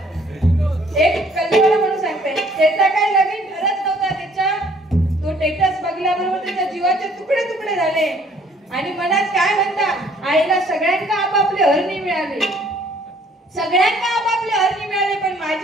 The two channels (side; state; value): both; normal; correlation 0.59